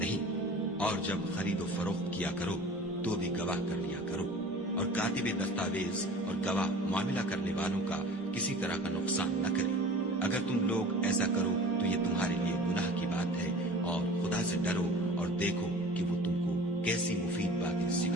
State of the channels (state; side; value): normal; both; correlation 0.41